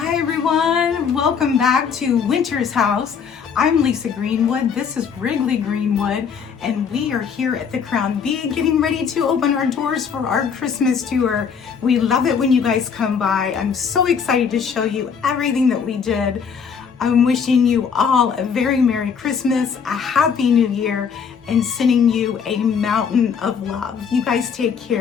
Hi everyone, welcome back to Winter's House. I'm Lisa Greenwood, this is Wrigley Greenwood, and we are here at the Crown B getting ready to open our doors for our Christmas tour. We love it when you guys come by. I'm so excited to show you everything that we did. I'm wishing you all a very Merry Christmas, a Happy New Year, and sending you a mountain of love. You guys take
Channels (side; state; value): right; quieter; 6.6 dB